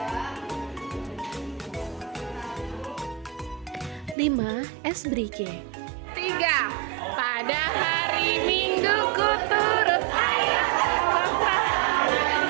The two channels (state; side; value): drops out; left; at 4.2 s